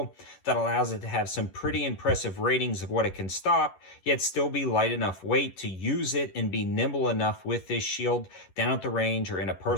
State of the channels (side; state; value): right; late; 11 ms